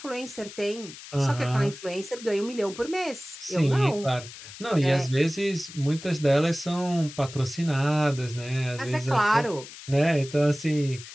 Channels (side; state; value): left; noise; hiss, 15 dB below the sound